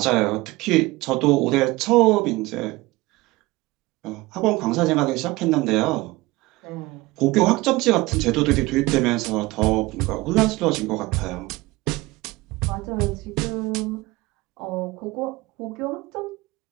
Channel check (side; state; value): left; quieter; 21.0 dB